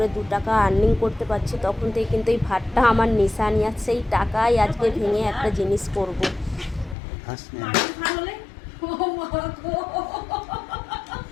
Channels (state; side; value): drops out; right; at 7.0 s